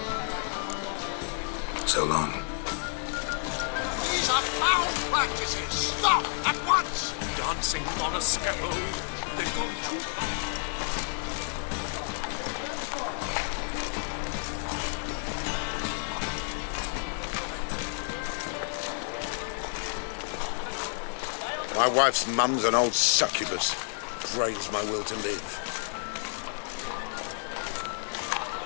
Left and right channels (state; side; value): silent; right; 58 dB below the other